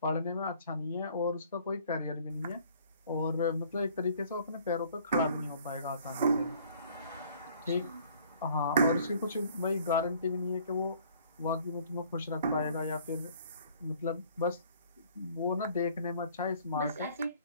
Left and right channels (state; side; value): inverted; both; correlation -0.56